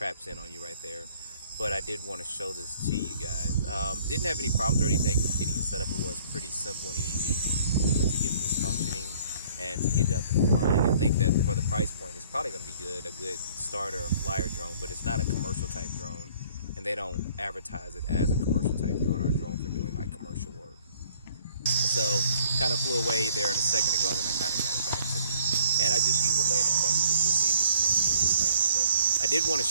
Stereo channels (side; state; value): both; inverted; correlation -0.57